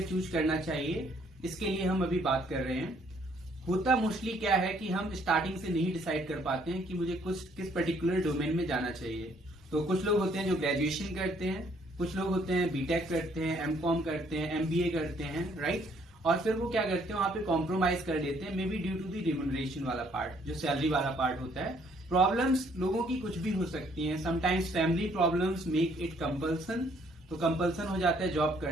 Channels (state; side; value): normal; both; correlation 0.65